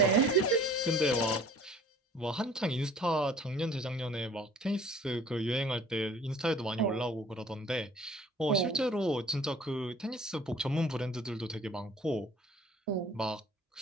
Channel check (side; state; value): both; normal; correlation 0.51